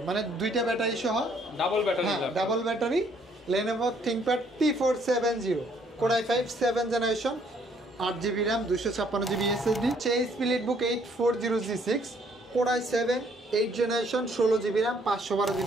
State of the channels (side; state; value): both; normal; correlation 0.65